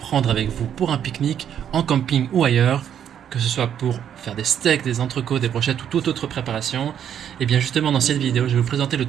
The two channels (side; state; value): left; quieter; 9.3 dB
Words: avec vous pour un pique-nique, en camping ou ailleurs, que ce soit pour faire des steaks, des entrecôtes, des brochettes ou toute autre préparation. Et bien justement dans cette vidéo, je vais vous présenter le